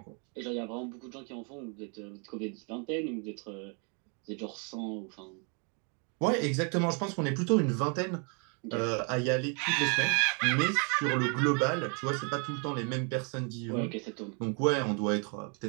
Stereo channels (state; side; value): quieter; left; 37.1 dB